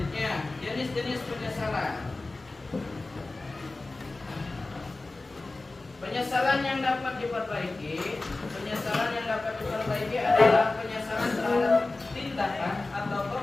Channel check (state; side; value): quieter; right; 3.2 dB